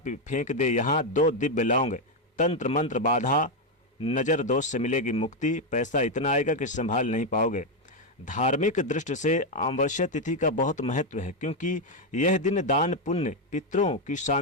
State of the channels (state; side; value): normal; both; correlation 0.04